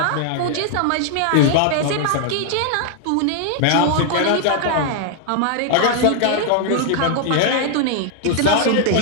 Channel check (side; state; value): both; different; correlation 0.00